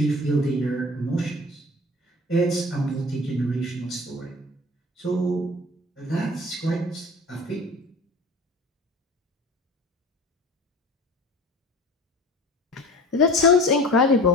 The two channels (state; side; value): normal; both; correlation 0.39